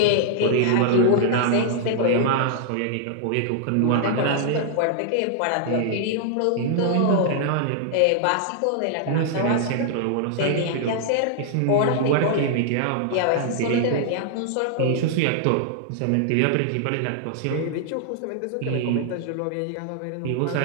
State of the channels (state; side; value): different; both; correlation -0.01